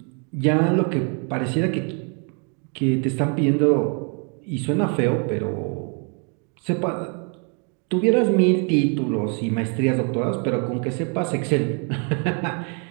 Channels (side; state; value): left; quieter; 37.8 dB